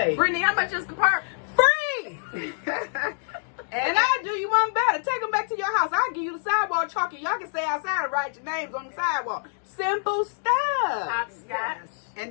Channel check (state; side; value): silent; right; 61 dB below the other